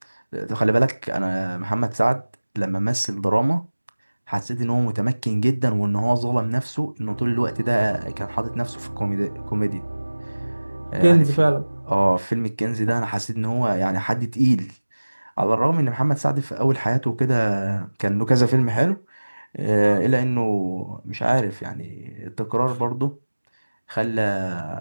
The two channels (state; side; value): inverted; both; correlation -1.00